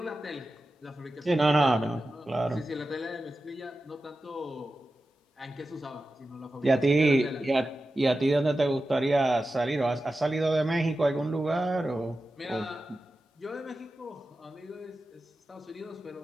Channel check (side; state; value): both; normal; correlation 0.93